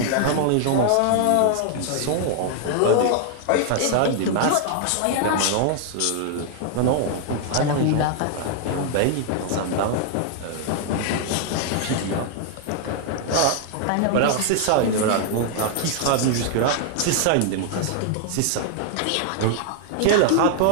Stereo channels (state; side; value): different; both; correlation 0.00